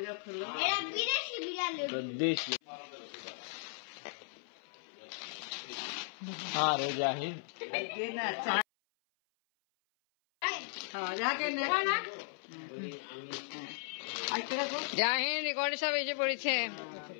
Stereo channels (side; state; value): right; silent; 54 dB below the other